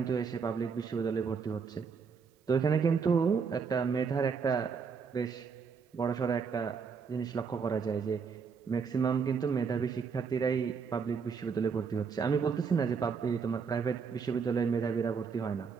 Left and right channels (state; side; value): quieter; left; 5.8 dB